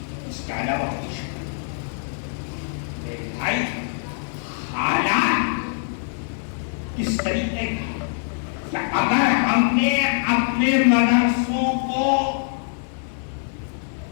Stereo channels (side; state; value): right; silent; digital silence